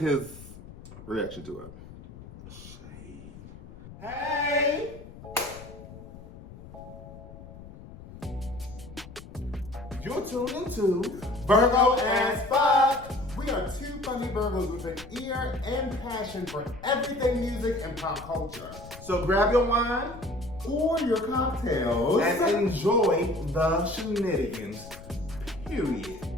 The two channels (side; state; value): left; noise; rumble, 16 dB below the sound